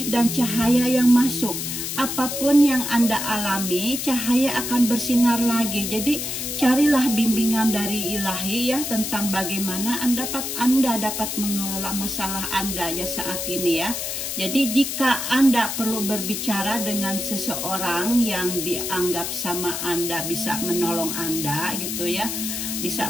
dan cahaya yang masuk. Apapun yang Anda alami, cahaya akan bersinar lagi. Jadi carilah bimbingan dari ilahi ya, tentang bagaimana Anda dapat mengelola masalah Anda ya saat ini ya. Jadi jika Anda perlu berbicara dengan seseorang yang dianggap sama Anda bisa menolong Anda gitu ya,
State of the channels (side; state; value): left; noise; hiss, 4 dB below the sound